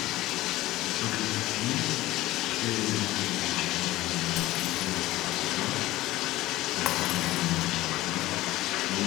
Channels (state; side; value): quieter; right; 17.1 dB